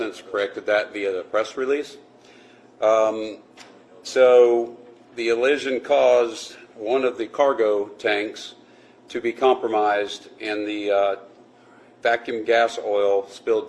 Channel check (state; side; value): identical; both; correlation 1.00